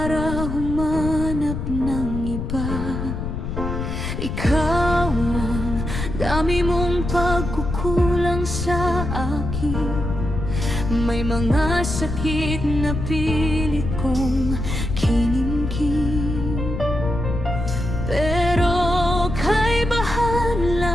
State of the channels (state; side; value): noise; left; rumble, 4 dB below the sound